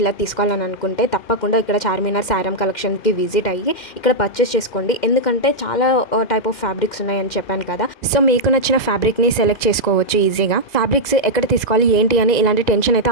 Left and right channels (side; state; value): right; late; 2.4 ms